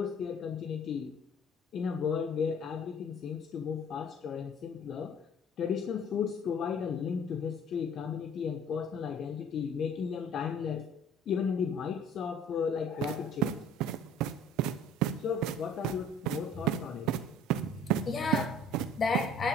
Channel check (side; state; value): both; normal; correlation 0.51